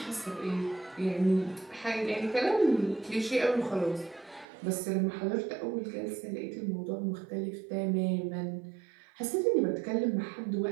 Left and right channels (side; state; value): left; drops out; at 4.5 s